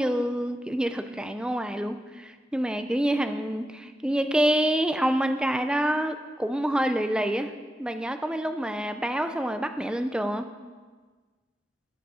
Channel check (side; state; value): both; normal; correlation 0.89